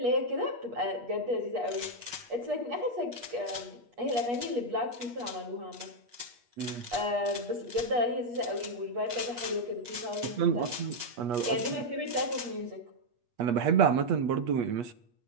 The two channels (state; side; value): late; left; 8.3 ms